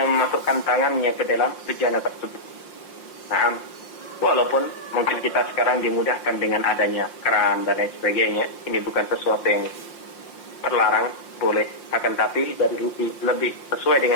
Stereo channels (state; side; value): late; right; 5.7 ms